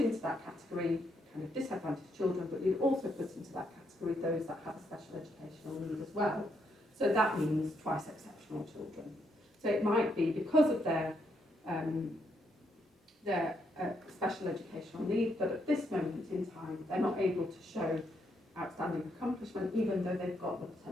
into that category kind of disadvantaged children, but you'd also put into that category those that have a special educational need as well. So that means twice exceptional children. So it might be because of their special educational need, but at this moment in time, they're not able to show outstanding accomplishment, even though they've got the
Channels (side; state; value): both; normal; correlation 0.77